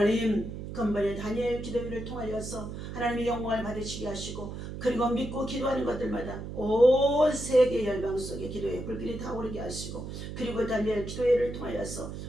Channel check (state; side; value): noise; right; hum, 8 dB below the sound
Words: 근본의 다니엘 기도회를 통하여서 하나님의 영광을 받으시게 하시고 그리고 믿고 기도하는 것들마다 온 세계 열방 속에 기도의 불길이 타오르게 하시고 그리고 다니엘 기도회를 통하여서